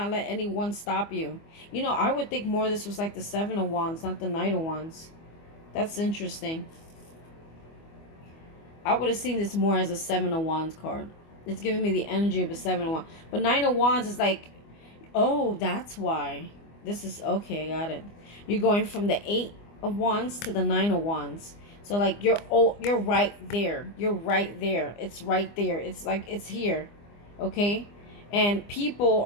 let anyone stop you. You know, I would think more of this was like the Seven of Wands, not the Knight of Wands. That's interesting. I would have seen this more as a Seven of Wands card. It's giving me the energy of a Seven of Wands. But Nine of Wands is like, oh, that's why. This is, okay, I got it. You're going from the Eight of Wands to the Nine of Wands. So like you're right there. You're right there. It's right there. It's like it's here. Okay? And people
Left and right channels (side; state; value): right; late; 25 ms